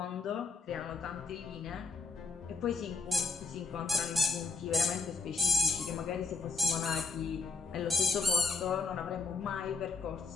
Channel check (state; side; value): quieter; right; 4.4 dB